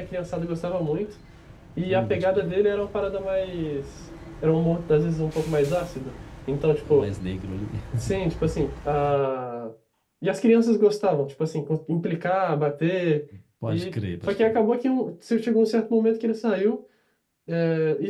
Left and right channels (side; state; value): both; identical; correlation 1.00